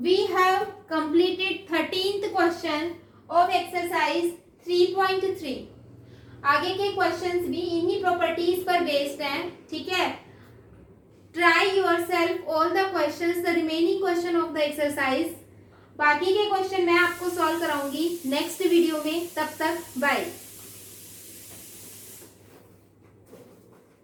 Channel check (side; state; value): both; identical; correlation 1.00